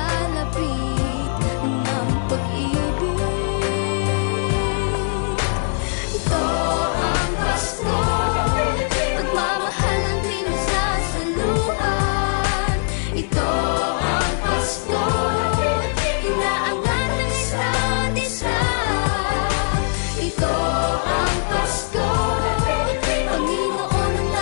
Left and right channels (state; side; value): silent; right; 65 dB below the other